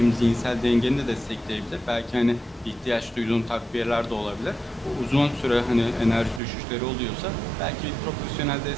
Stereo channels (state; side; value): drops out; left; at 6.4 s